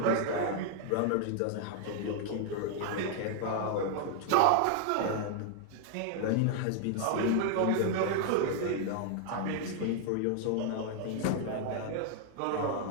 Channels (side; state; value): both; different; correlation 0.00